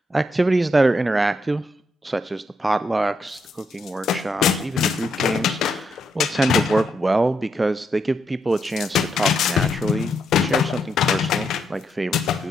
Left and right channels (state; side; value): normal; both; correlation 0.80